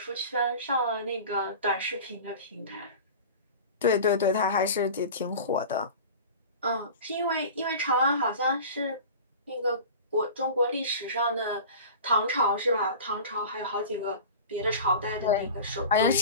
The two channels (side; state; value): both; inverted; correlation -0.36